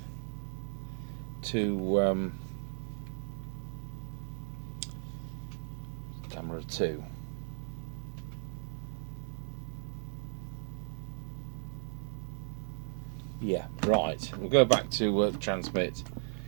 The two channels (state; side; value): silent; left; digital silence